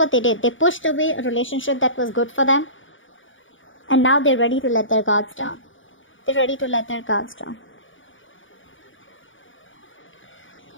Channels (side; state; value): right; late; 0.57 ms